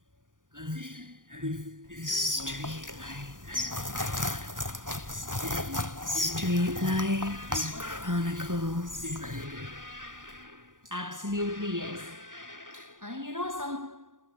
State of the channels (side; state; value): left; late; 0.88 ms